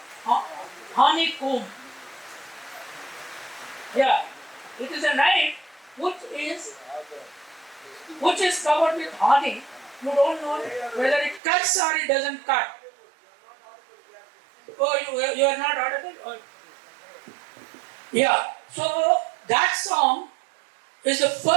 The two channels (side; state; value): left; drops out; at 11.4 s